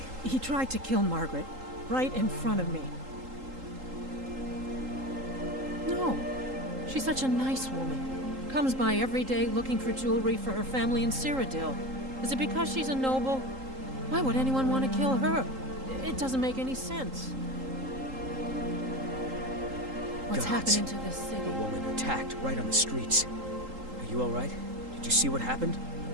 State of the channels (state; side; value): late; left; 3.8 ms